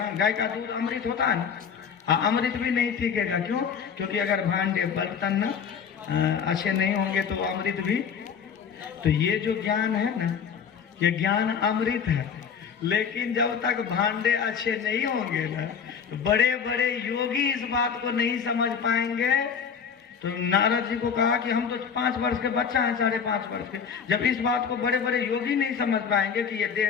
गाय का दूध अमृत होता है ना, अमृत भी नहीं टिकेगा। क्यों? क्योंकि अगर भांडे बर्तन ना अच्छे नहीं होंगे तो अमृत भी। तो ये जो ज्ञान है ना ये ज्ञान अमृत है, लेकिन जब तक भांडे अच्छे नहीं होंगे ना तो बड़े बड़े योगी इस बात को नहीं समझ पाएंगे। तो नारद जी को कहा कि हम तो 5 वर्ष के बच्चा हैं, 5.5 वर्ष के, जब इस बात को बड़े बड़े योगी नहीं समझ पाएंगे कि ये देह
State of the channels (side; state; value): right; quieter; 6.9 dB